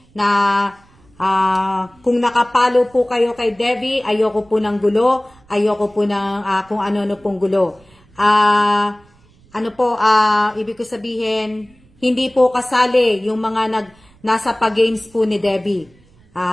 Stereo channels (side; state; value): right; noise; rumble, 30 dB below the sound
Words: na kung nakapalo po kayo kay Devi, ayoko po ng gulo, ayoko po ng kung ano-ano pong gulo. Ibig ko sabihin, hindi po kasali yung mga nasa pag-games po ni Devi.